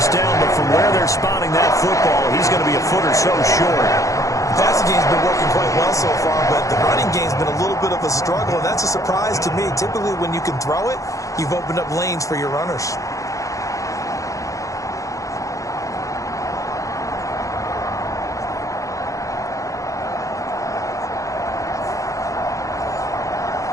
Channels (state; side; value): late; right; 0.16 ms